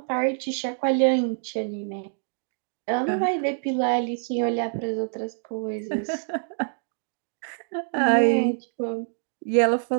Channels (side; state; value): left; silent; digital silence